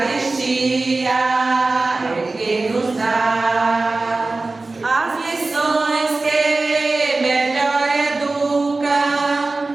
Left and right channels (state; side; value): quieter; left; 3.4 dB